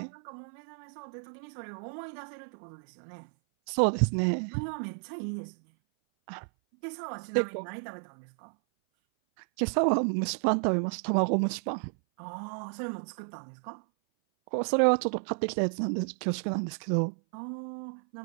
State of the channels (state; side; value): silent; left; 56 dB below the other